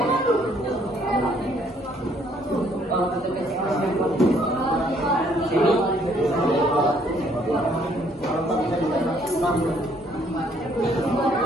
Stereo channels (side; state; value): both; normal; correlation 0.65